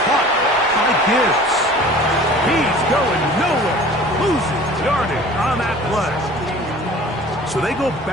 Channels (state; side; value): normal; both; correlation 0.45